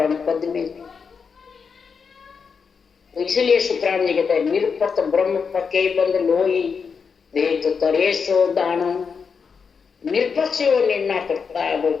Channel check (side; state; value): right; quieter; 5.8 dB